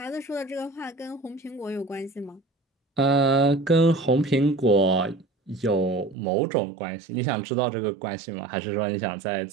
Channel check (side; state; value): left; drops out; at 6.2 s